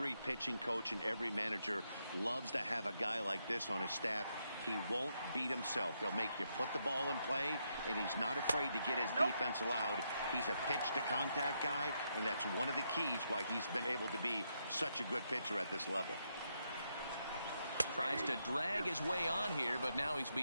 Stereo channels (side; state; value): both; inverted; correlation -0.80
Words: pitching coach and every manager loves to have a guy like this on his staff. He won't beat himself. He'll make you put the ball in play, and he's not afraid to get his defense allowed. He's a pitch-to-contact guy, and that's one of the keys why he's been able to be such a good pitcher at this level. Tries to drag his way on here, but now he's